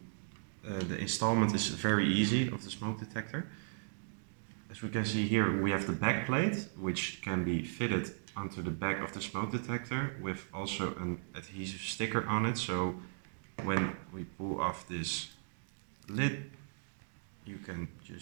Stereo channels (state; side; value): silent; left; digital silence